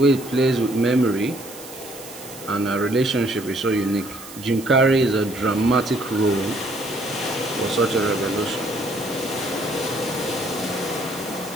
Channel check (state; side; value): noise; right; hiss, 15 dB below the sound